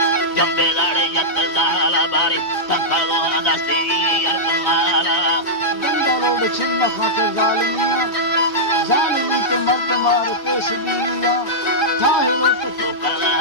जंबेदारे यत जाला बारे पंखलो दस्ती अरगमारा बंदलोड छिन्न खाते जालिमिया जालिमी ते मर्द मार पेश दिया ताहिरो तो कला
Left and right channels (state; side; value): late; right; 2.9 ms